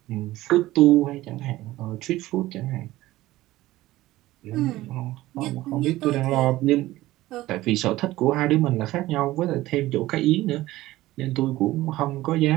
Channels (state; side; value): quieter; left; 16.8 dB